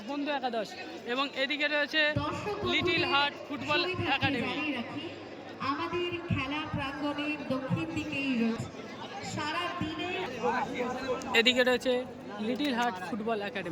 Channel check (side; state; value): both; identical; correlation 1.00